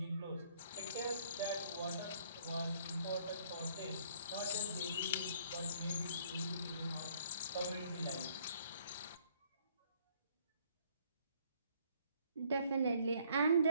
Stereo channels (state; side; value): inverted; both; correlation -0.62